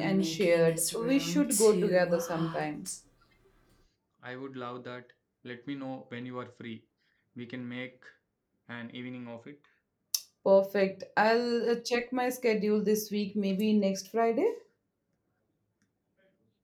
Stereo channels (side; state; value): both; identical; correlation 1.00